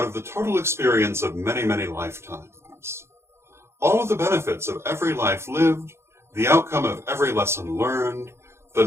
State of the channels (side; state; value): left; late; 0.13 ms